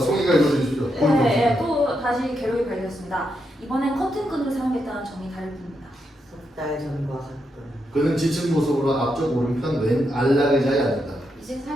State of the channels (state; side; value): normal; both; correlation 0.82